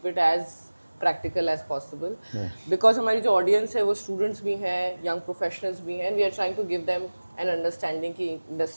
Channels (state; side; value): inverted; both; correlation -1.00